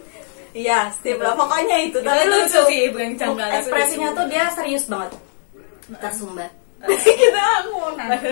Iya, Steve lah pokoknya itu. Tapi lucu sih, bukan janggal. Ekspresinya tuh dia serius banget. Tersumbat. Kita mau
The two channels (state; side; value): silent; right; digital silence